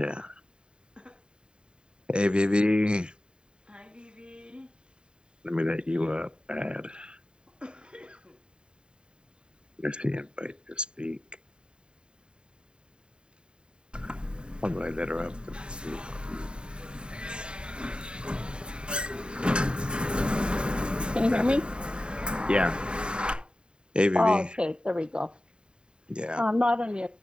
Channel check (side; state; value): left; late; 0.050 ms